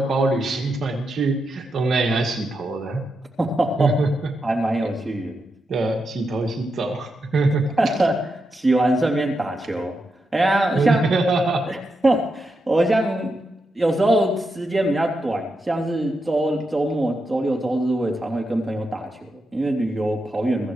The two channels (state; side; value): normal; both; correlation 0.86